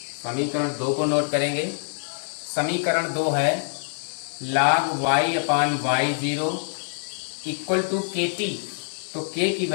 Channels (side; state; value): right; silent; 62 dB below the other